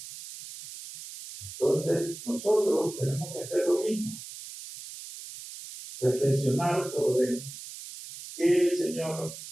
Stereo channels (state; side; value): noise; right; hiss, 13 dB below the sound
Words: Entonces, nosotros tenemos que hacer lo mismo. Reflexionar sobre qué el Señor